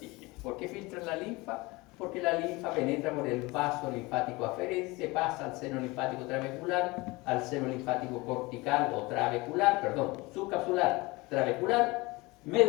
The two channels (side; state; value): right; quieter; 23.2 dB